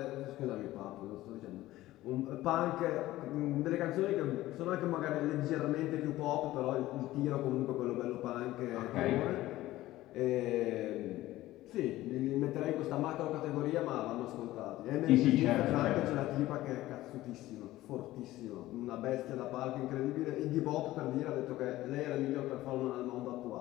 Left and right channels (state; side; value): quieter; right; 16.2 dB